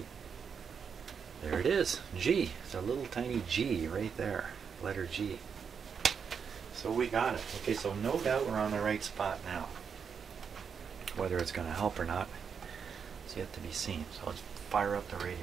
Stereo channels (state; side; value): quieter; left; 6.6 dB